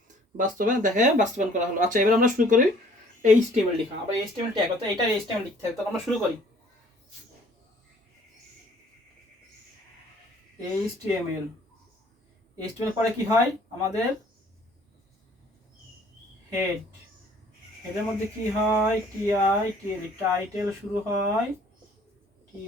বাস্তবায়ন করা হলো। আচ্ছা এবার আমরা শুরু করি এইচটিএমএল লেখা। আবার এইচটিএমএল ট্যাগ, অর্থাৎ এটা এইচটিএমএল লিখতে হবে, তাহলে আমরা শুরু করি। এইচটিএমএল পরে কি হয় আমাদের, হেডের মধ্যে কি হয়, টিআই টিএলই, টাইটেল শুরু হয়,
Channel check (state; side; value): normal; both; correlation 0.56